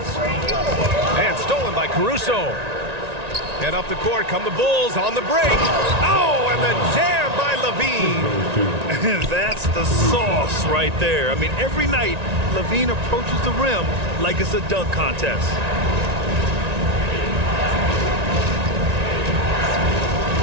And stolen by Caruso. And up the court come the Bulls on the break. Oh, and the jam by Levine. That's the sauce right there. I mean, every night, Levine approaches the rim like it's a dunk contest.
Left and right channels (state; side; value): late; left; 1.9 ms